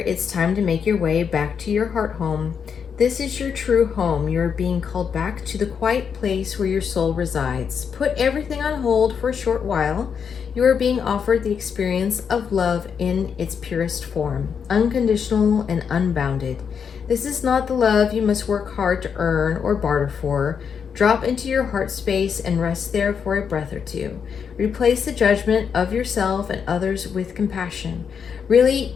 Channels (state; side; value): quieter; right; 6.9 dB